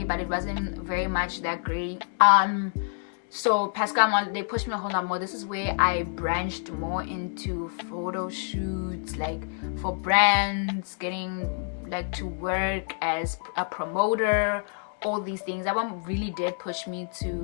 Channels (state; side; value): silent; right; 56 dB below the other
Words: but it wasn't very much that great. So Pascal, they pushed me a whole lot more. This is where I branched more into photo shoots, like for brands, getting like to work as a promoter, all these things. That one really did push me